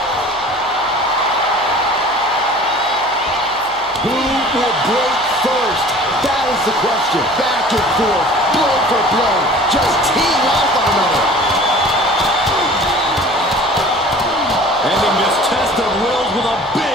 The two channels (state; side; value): noise; left; hum, 26 dB below the sound